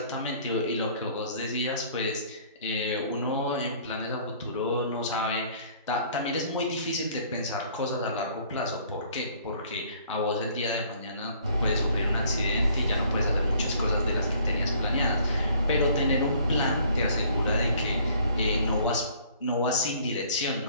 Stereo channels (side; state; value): both; inverted; correlation -0.57